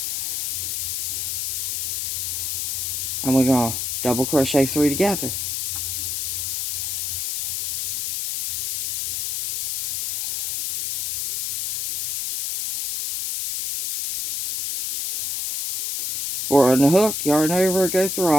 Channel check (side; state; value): left; noise; hiss, 2 dB below the sound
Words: and we're going to double crochet 3 together. Four on the hook, yarn over, go through